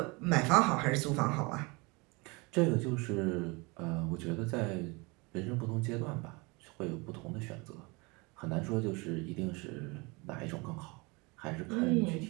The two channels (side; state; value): left; quieter; 27.2 dB